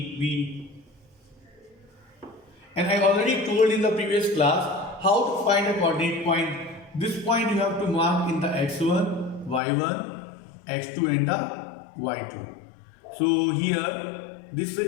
And I already told in the previous class how to find a coordinate point. This point you have to mark in the x1, y1, x2 and the y2. So here this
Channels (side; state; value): right; drops out; at 9.6 s